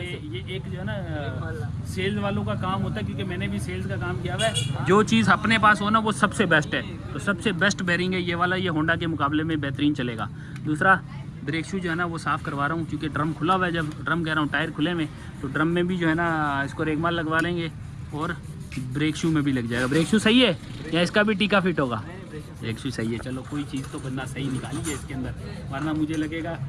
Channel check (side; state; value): both; identical; correlation 1.00